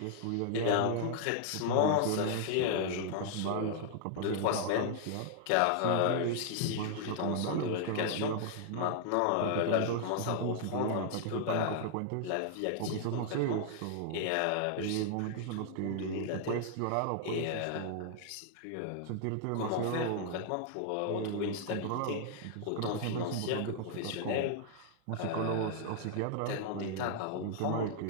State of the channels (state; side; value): different; both; correlation -0.01